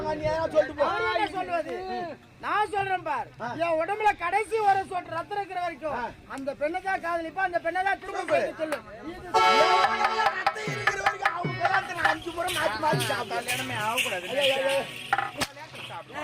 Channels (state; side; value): identical; both; correlation 1.00